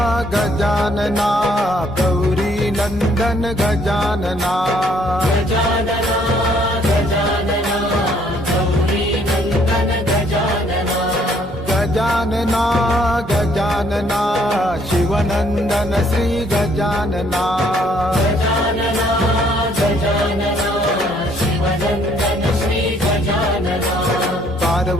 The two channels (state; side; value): normal; both; correlation 0.65